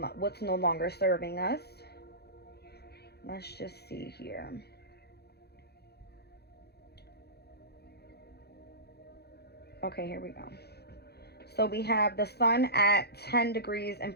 what's no longer serving us. Let's just see here. Okay, here we go. So we have the sun at 10 degrees and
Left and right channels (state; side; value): late; right; 0.47 ms